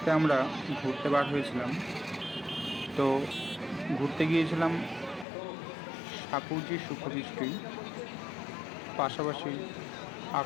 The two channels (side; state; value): right; drops out; at 5.2 s